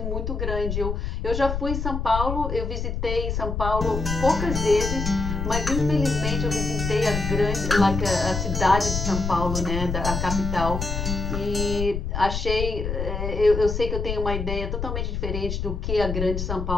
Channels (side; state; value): left; noise; rumble, 3 dB below the sound